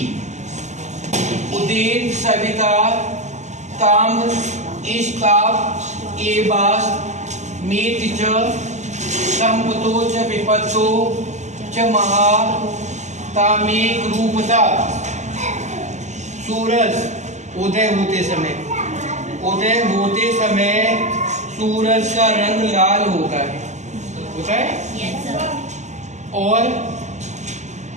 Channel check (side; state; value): left; late; 0.34 ms